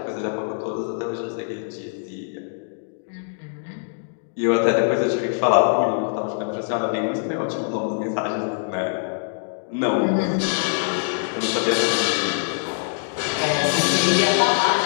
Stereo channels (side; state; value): right; silent; digital silence